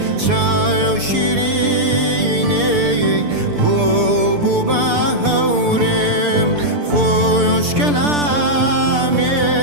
شاي وشيريني بوبو باهورم خوش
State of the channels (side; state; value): left; late; 6.8 ms